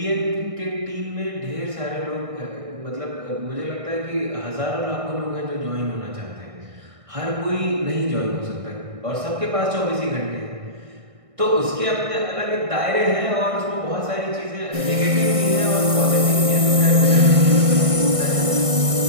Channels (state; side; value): late; left; 1.6 ms